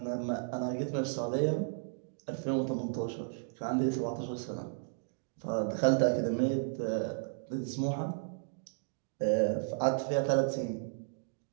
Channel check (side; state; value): left; silent; digital silence